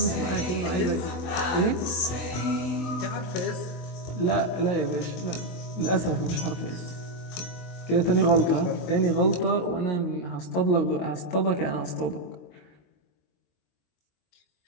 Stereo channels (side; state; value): right; late; 22 ms